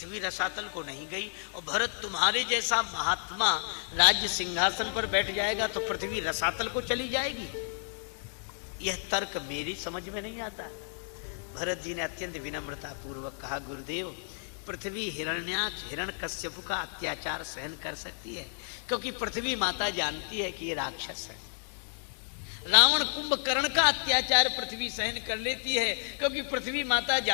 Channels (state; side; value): silent; right; 57 dB below the other